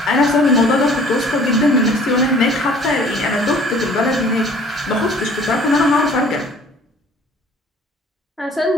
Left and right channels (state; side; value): normal; both; correlation 0.52